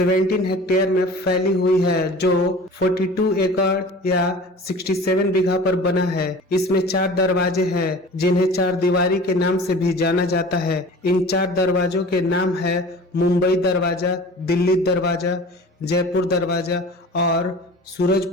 हेक्टेयर में फैली हुई है जो 42 एकड़ या 67 बीघा पर बना है। इसमें 4 दरवाजे हैं जिन्हें 4 दीवारी के नाम से भी जाना जाता है। इन 4 दरवाजों के नाम है मुंबई दरवाजा, दिल्ली दरवाजा, जयपुर दरवाजा और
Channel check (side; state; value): both; normal; correlation 0.41